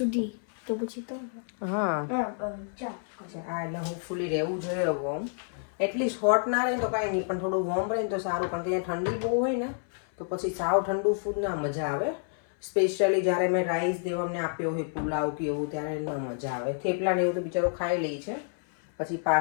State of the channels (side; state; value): right; silent; 59 dB below the other